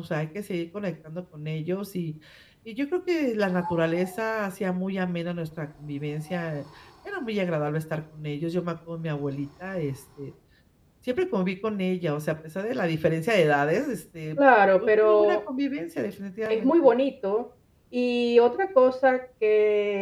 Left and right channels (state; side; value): identical; both; correlation 1.00